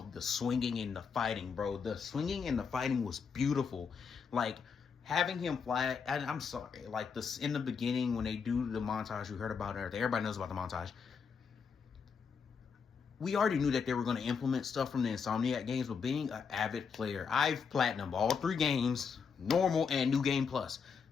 the swinging and the fighting, bro. The swinging and the fighting was beautiful. Like, having him fly, and I'm sorry, like this in the beginning when they do the montage, we heard about it, everybody knows about the montage. We already knew that they were going to implement stuff from the Insomniac games, but being an avid player, I've platinumed all 3 games, normal and New Game Plus.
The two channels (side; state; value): right; quieter; 6.0 dB